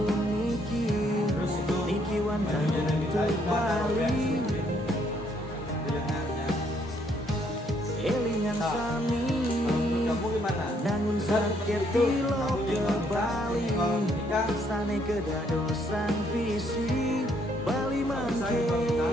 niki wantang untuk Bali, elingan sami, nangun sakit tilo ke Bali, sane kedadosan visi, Bali mangke,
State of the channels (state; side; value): normal; both; correlation 0.69